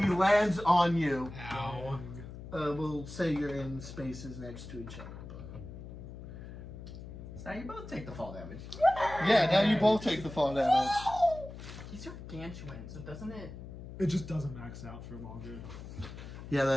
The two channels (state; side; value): noise; left; hum, 12 dB below the sound